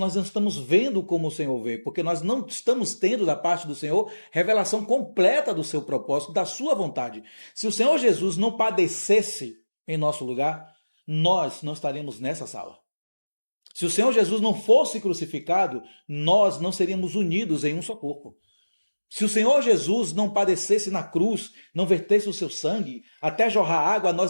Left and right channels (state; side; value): inverted; both; correlation -1.00